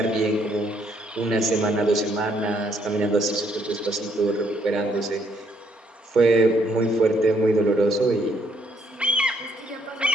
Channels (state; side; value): normal; both; correlation 0.70